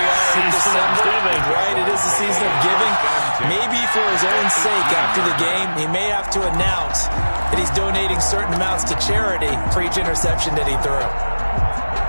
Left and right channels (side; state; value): both; inverted; correlation -1.00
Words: are in December, right? It is the season of giving. Maybe for his own sake after the game, he may have to announce that he's donating certain amounts to charity for each interception that he threw.